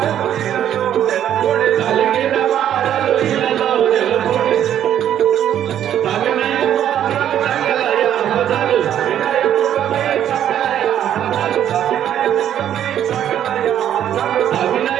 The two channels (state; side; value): quieter; left; 10.5 dB